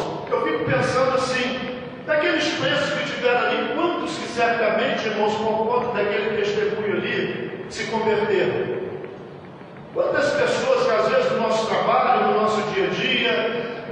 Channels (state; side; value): identical; both; correlation 1.00